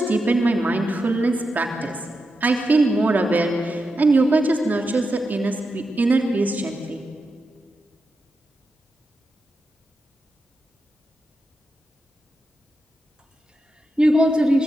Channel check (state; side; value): normal; both; correlation 0.88